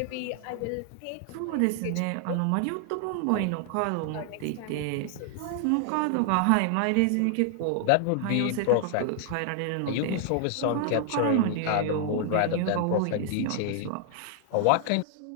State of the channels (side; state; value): both; different; correlation 0.00